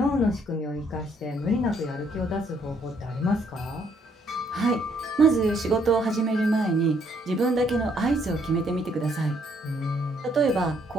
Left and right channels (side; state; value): both; normal; correlation 0.69